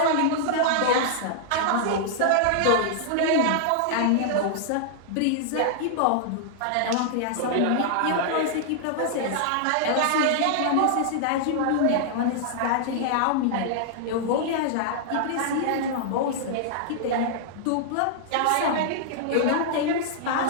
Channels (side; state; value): both; different; correlation -0.01